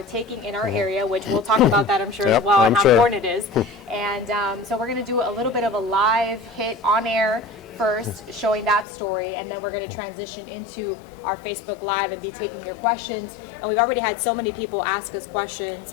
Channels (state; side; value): drops out; right; at 8.8 s